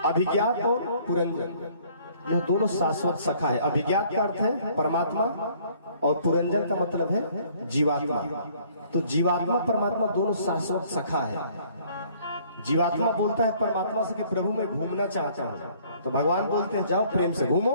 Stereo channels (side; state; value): both; inverted; correlation -0.59